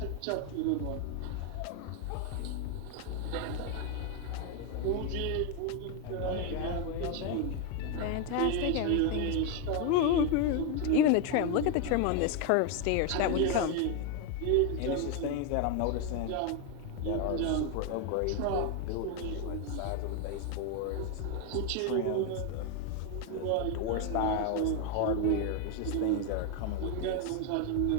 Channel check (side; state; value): both; different; correlation 0.01